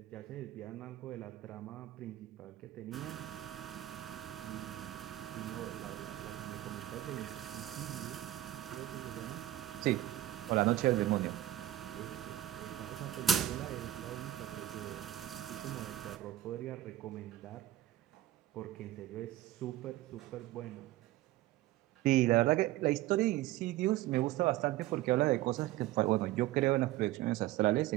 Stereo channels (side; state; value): left; quieter; 14.6 dB